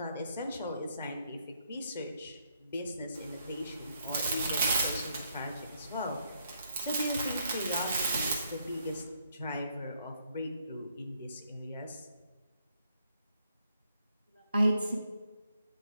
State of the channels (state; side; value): inverted; both; correlation -0.73